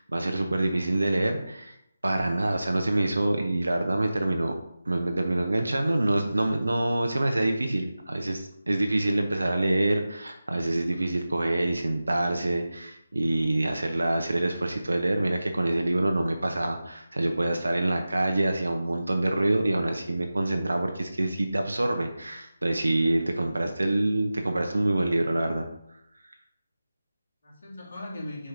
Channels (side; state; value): both; inverted; correlation -0.95